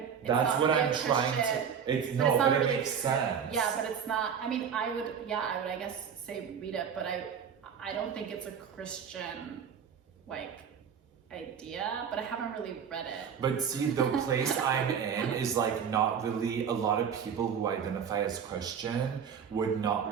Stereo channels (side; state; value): left; quieter; 7.4 dB